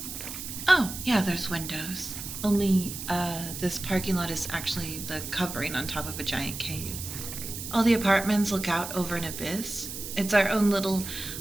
Oh, yeah, there's windows. Only, this parking lot is actually the covering on top of a giant cave. All the apartments look out over an abyss. It's our own little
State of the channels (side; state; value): right; noise; hiss, 8 dB below the sound